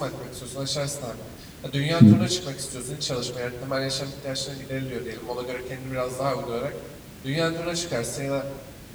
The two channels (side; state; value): both; identical; correlation 1.00